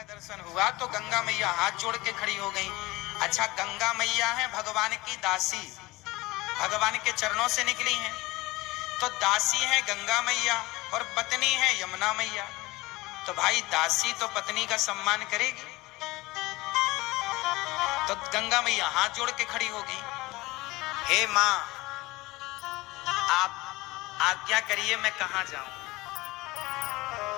दर्शन हुआ तो गंगा मैया हाथ जोड़ के खड़ी हो गई। अच्छा, गंगा मैया है भगवान की दासी, भगवान के चरणों से निकली हैं, तो दासी है गंगा मैया और पत्नी है यमुना मैया। तो भाई दासी तो पत्नी का सम्मान करेगी, तो गंगा मैया हाथ जोड़ के खड़ी होगी, हे माँ आप आज्ञा करिए मैं कहां जाऊं।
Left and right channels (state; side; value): quieter; right; 20.8 dB